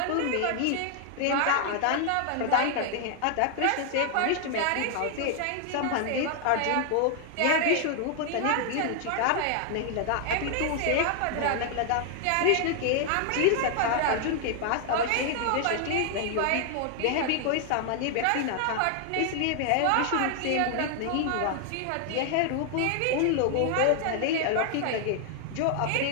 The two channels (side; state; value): both; different; correlation 0.00